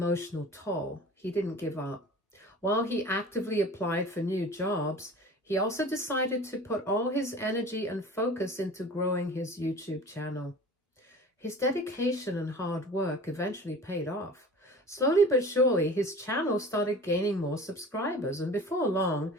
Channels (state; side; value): normal; both; correlation 0.40